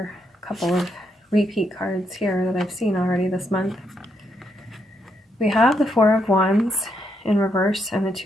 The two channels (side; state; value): both; normal; correlation 0.78